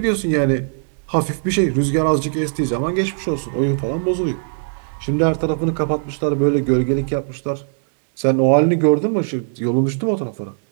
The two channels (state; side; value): silent; left; 66 dB below the other